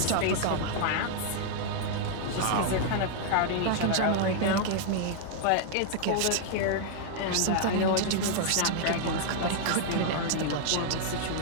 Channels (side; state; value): both; different; correlation -0.01